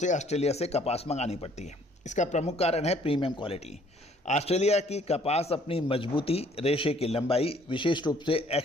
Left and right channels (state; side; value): normal; both; correlation 0.60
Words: ऑस्ट्रेलिया से कपास मंगानी पड़ती है? इसका प्रमुख कारण है प्रीमियम क्वालिटी। ऑस्ट्रेलिया की कपास अपनी मजबूती, रेशे की लंबाई, विशेष रूप से